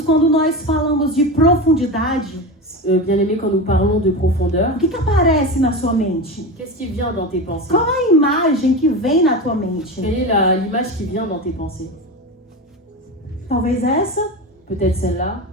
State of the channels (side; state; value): both; normal; correlation 0.23